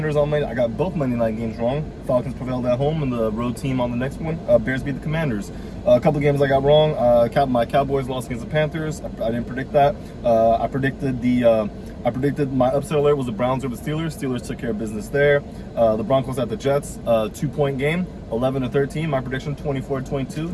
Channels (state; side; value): identical; both; correlation 1.00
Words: on Monday. I got both Monday night games wrong. Falcons prevailed at home, and the road team on the next one. Bears beat the Commanders. A couple of games I got wrong. My Cowboys lost against the Panthers. I didn't predict that. I predicted my upset alert was the Browns over the Steelers. Steelers took care of business there. The Broncos at the Jets, 2-point game, 11-13. My prediction,